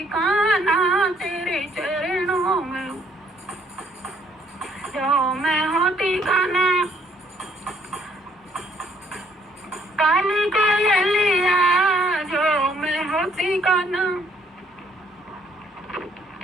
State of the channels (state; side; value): normal; both; correlation 0.65